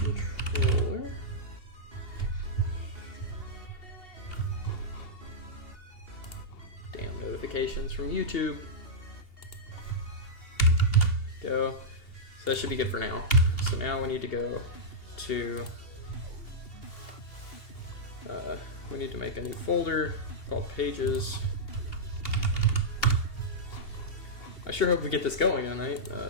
Damn notifications from YouTube. Go. So that should be good for now. So now we need to go to we need to make a new folder called pages. I sure hope we get this going tonight.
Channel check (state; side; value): late; right; 2.8 ms